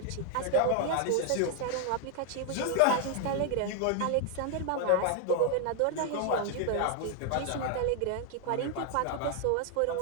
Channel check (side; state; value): both; different; correlation 0.00